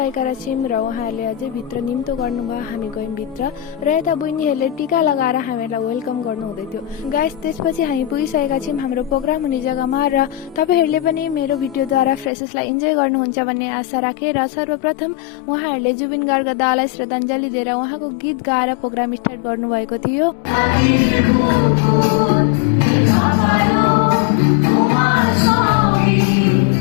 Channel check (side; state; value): right; drops out; at 12.3 s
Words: छौँ र उहाँहरूले अझै भित्र निम्तो गर्नुभयो। हामी गयौँ भित्र र यता बहिनीहरूले टिका लगाएर हामीहरूलाई वेलकम गर्नु हुँदै थियो। गाइस, त्यसपछि हामी पुगिसकेका छौँ हाम्रो प्रोग्राम हुने जग्गामा र तपाईँहरूले पनि मेरो भिडियोद्वारा फ्रेसेसलाई इन्जोय गर्नुहुन्छ भन्ने आशा राखेर सर्वप्रथम उहाँहरूले जुबिन गार्गका दालाई श्रद्धाञ्जली दिएर उहाँको गीत गाएर प्रोग्राम स्टार्ट गर्नुभएको थियो।